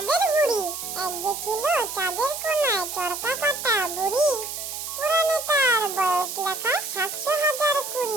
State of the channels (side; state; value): right; noise; hiss, 6 dB below the sound